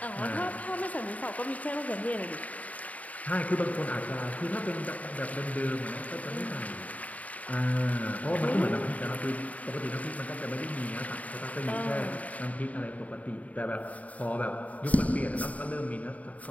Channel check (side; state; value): right; late; 0.071 ms